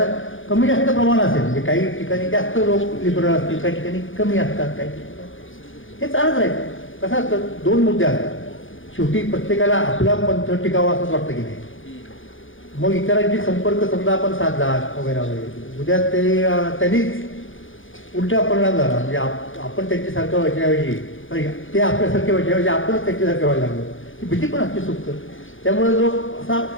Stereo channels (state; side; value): late; right; 0.58 ms